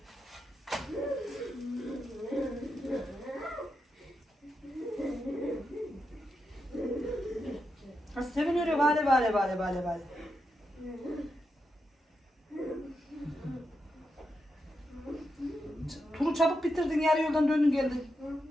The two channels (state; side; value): normal; both; correlation 0.85